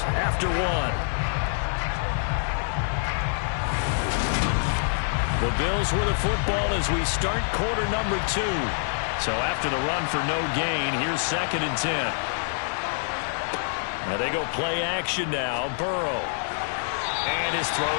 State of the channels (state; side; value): silent; right; digital silence